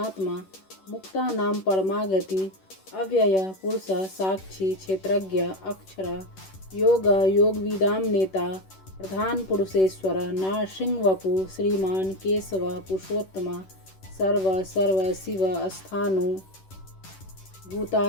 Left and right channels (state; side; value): late; right; 11 ms